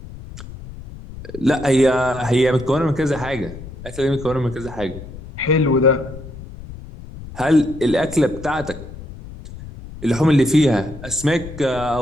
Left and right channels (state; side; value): noise; left; rumble, 14 dB below the sound